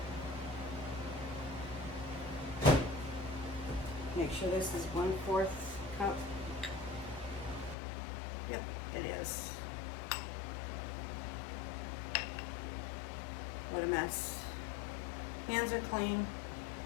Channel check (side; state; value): right; drops out; at 7.8 s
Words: Make sure this is 1/4 cup. Yep, it is. What a mess. Hands are clean.